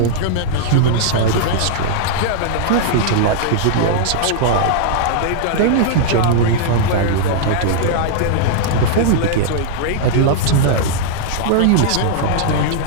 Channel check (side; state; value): both; different; correlation -0.01